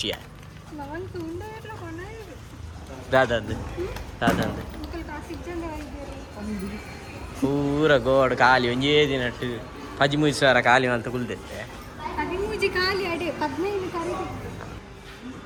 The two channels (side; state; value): both; identical; correlation 1.00